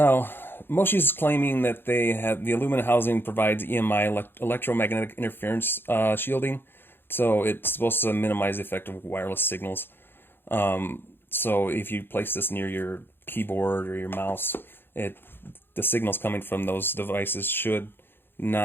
Moshi's claiming that they have the aluminum housing provides EMI, electromagnetic interference shielding, so it's supposed to minimize the effect of wireless signals. So if you place this near your keyboard or your mouse, the signals coming from those devices should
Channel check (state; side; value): late; right; 0.10 ms